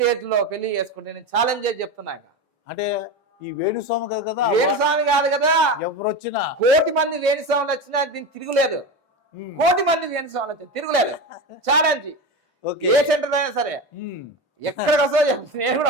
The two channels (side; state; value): both; normal; correlation 0.22